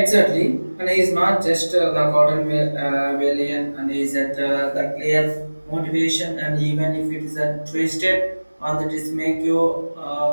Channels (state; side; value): inverted; both; correlation -1.00